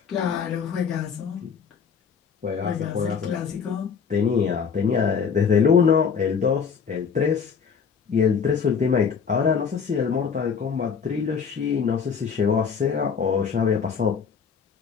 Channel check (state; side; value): quieter; right; 6.4 dB